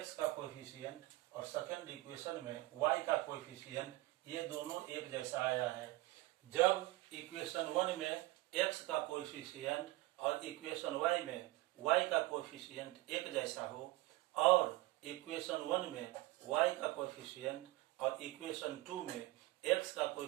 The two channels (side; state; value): left; quieter; 19.3 dB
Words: का कोएफिशिएंट और सेकंड इक्वेशन में y का कोएफिशिएंट ये दोनों एक जैसा आया है। जब इक्वेशन 1 में x का कोएफिशिएंट और इक्वेशन y में y का कोएफिशिएंट एक जैसा हो, और इक्वेशन 1 में y का कोएफिशिएंट और इक्वेशन 2 में x का